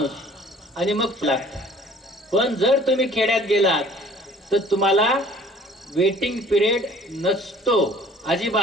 आणि मग लागतं. पण जर तुम्ही खेड्यात गेलात तर तुम्हाला वेटिंग पिरियड नसतो.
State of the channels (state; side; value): normal; both; correlation 0.52